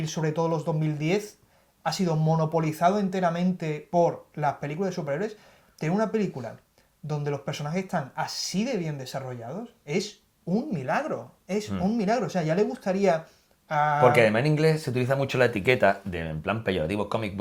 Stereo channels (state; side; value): identical; both; correlation 1.00